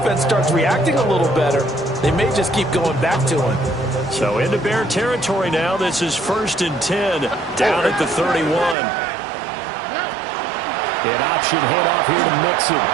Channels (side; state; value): left; drops out; at 8.8 s